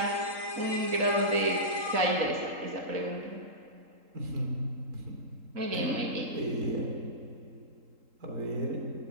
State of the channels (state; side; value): late; left; 3.8 ms